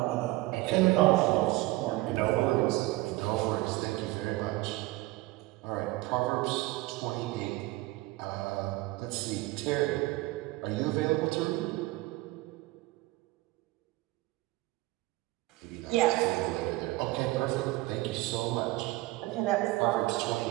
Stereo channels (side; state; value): left; quieter; 19.6 dB